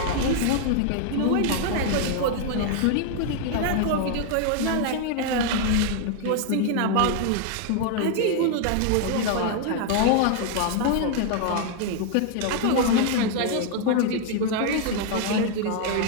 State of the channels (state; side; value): different; both; correlation 0.00